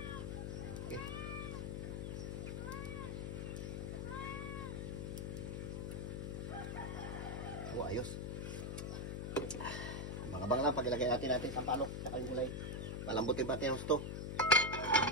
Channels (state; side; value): noise; left; hum, 3 dB below the sound